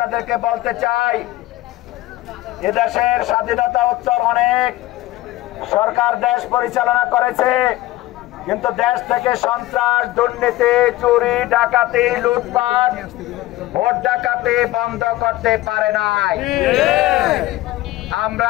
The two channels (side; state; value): right; quieter; 17.0 dB